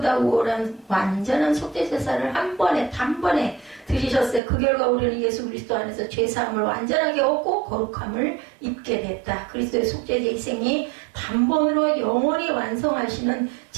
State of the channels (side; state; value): left; drops out; at 4.4 s